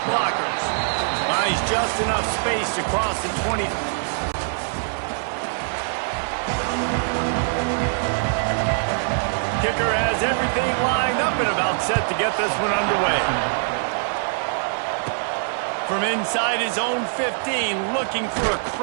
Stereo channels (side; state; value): left; silent; 62 dB below the other